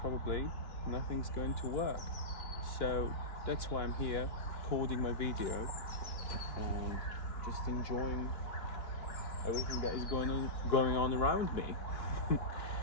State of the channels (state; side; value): late; right; 2.9 ms